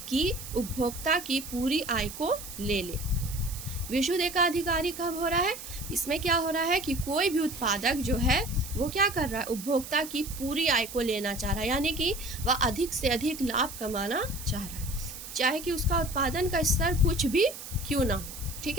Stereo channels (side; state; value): right; noise; hiss, 11 dB below the sound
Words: कि उपभोक्ता की पूरी आय को ले ले। विशुद्ध एकाधिकारी कब हो रहा है, इसमें क्या हो रहा है कि कोई भी उत्पादक जो है वो क्या कर रहा है, उपभोक्ता की पूरी आय को लेना चाह रहा है, यानी कि वह अधिक से अधिक लाभ कमाना चाह रहा है, चाहे कि उसका उत्पादन का स्तर कुछ भी क्यों ना हो। ठीक